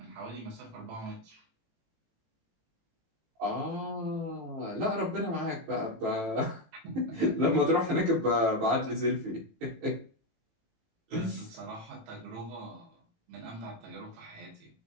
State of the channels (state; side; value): late; left; 18 ms